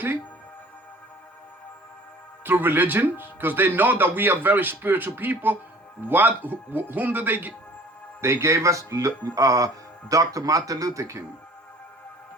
through religion, because they know that we are very spiritual people. Whom did they give? They gave us Dr. Martin Luther King.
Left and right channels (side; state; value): both; normal; correlation 0.49